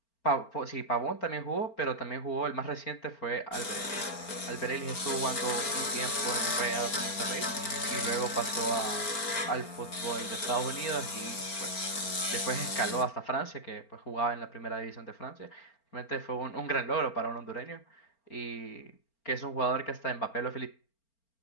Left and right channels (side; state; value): right; late; 4.4 ms